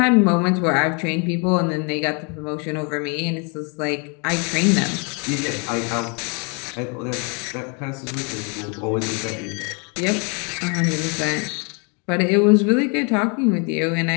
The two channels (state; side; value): quieter; right; 34.7 dB